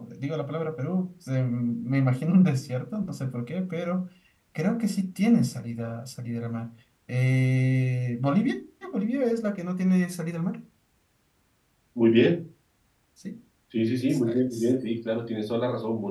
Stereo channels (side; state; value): both; identical; correlation 1.00